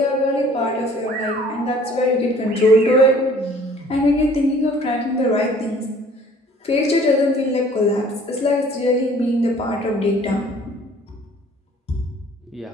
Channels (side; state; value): both; normal; correlation 0.53